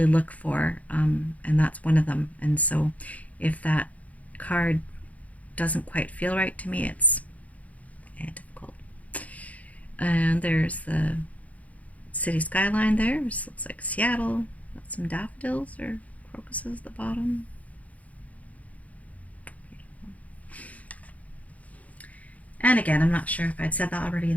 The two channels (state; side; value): late; right; 0.070 ms